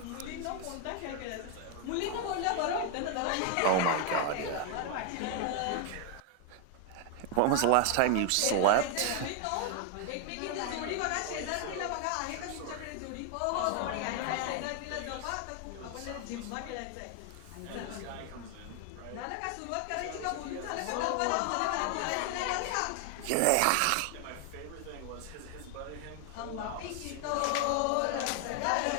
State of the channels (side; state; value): both; different; correlation 0.00